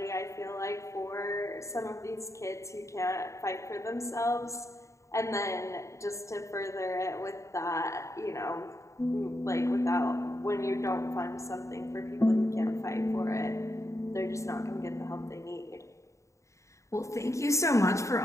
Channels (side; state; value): right; late; 0.15 ms